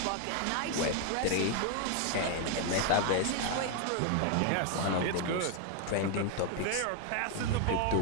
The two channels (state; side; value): different; both; correlation 0.01